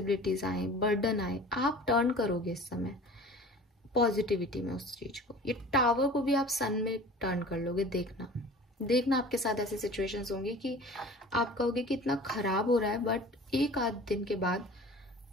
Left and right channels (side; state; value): both; normal; correlation 0.42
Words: आए, बर्डन आए, आप टर्न करोगे इस समय पॉजिटिविटी में उस चीज को। ये टावर को भी आप सन में टर्न कर लोगे। देखना आपके साथ ऐसी सिचुएशंस होंगी कि आप कहोगे कि इतना खराब हो रहा है, बट एक आध दिन के बाद